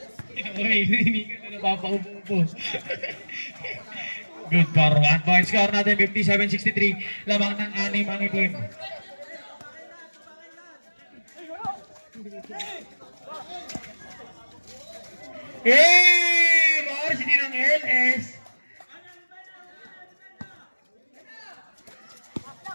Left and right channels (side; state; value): both; inverted; correlation -1.00